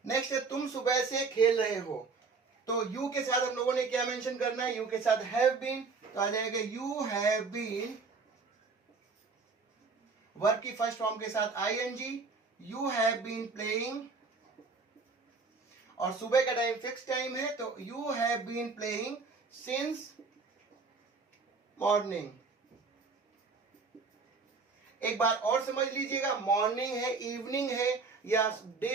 Next है तुम सुबह से खेल रहे हो, तो यू के साथ हम लोगों ने क्या मेंशन करना है, यू के साथ हैव बीन, तो आ जाएगा यू हैव बीन, वर्ब की फर्स्ट फॉर्म के साथ ING, you have been playing, और सुबह का टाइम फिक्स टाइम है तो you have been playing since morning. एक बार और समझ लीजिएगा, मॉर्निंग है, इवनिंग है, या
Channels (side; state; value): left; quieter; 4.4 dB